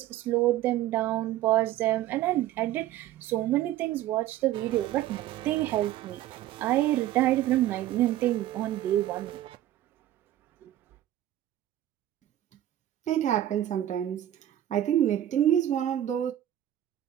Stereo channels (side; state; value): left; quieter; 13.1 dB